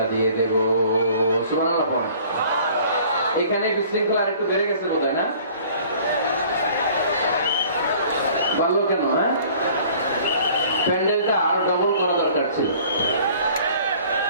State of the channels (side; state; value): both; inverted; correlation -0.51